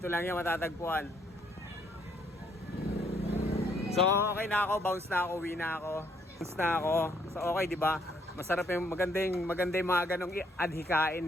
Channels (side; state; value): both; normal; correlation 0.69